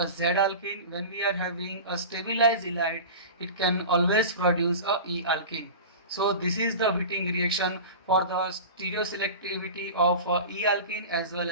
Z alkene. When we are having a stabilized halide, it can always produce a E alkene. So this is the Wittig reaction for the stereoselectivity of E alkene as well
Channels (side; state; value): both; inverted; correlation -0.32